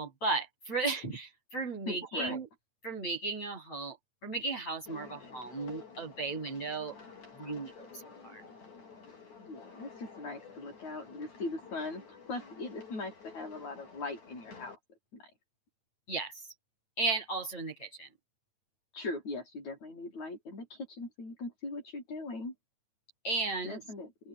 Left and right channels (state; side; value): late; right; 8.9 ms